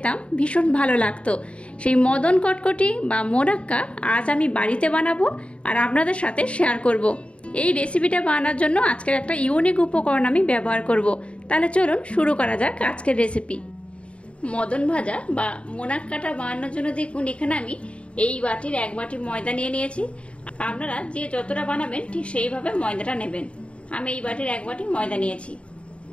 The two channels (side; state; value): right; late; 0.060 ms